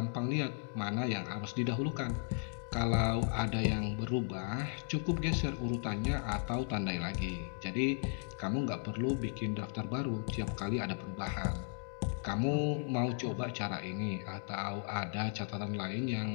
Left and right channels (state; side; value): silent; right; 54 dB below the other